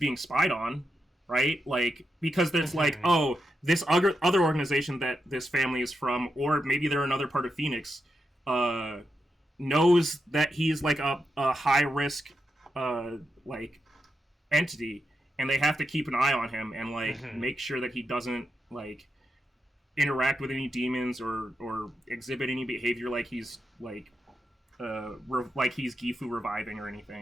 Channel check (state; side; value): normal; both; correlation 0.87